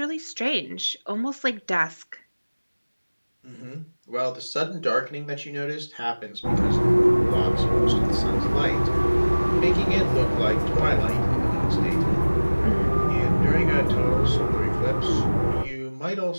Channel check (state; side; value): inverted; both; correlation -1.00